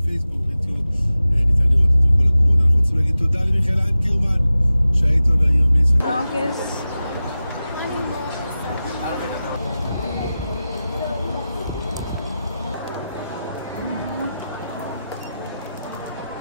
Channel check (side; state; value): both; inverted; correlation -0.94